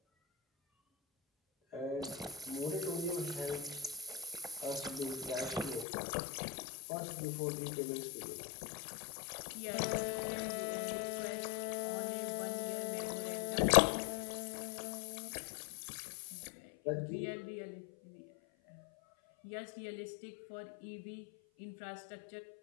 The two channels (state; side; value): drops out; right; at 5.9 s